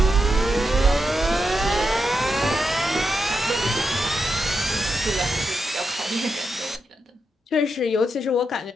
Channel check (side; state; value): both; normal; correlation 0.85